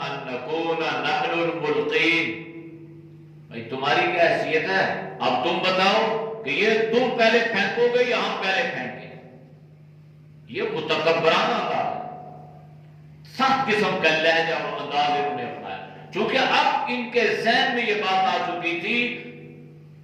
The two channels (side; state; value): both; identical; correlation 1.00